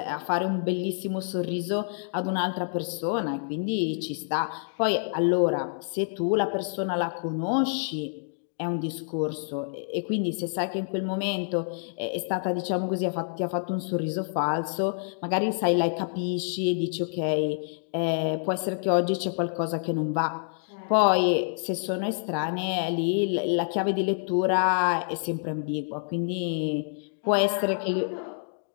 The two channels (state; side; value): silent; right; digital silence